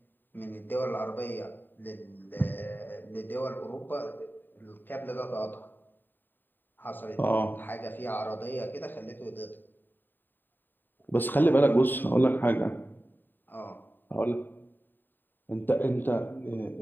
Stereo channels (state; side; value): late; right; 0.092 ms